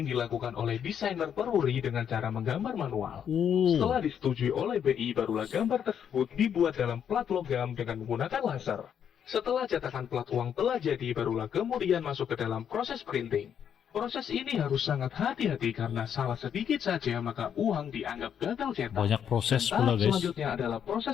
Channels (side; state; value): right; quieter; 8.5 dB